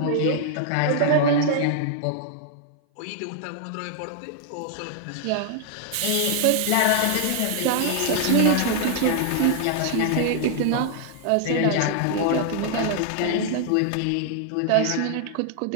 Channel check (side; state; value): both; different; correlation -0.01